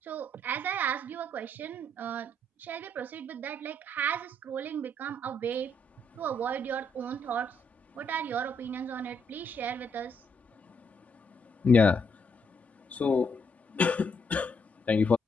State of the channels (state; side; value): normal; both; correlation 0.74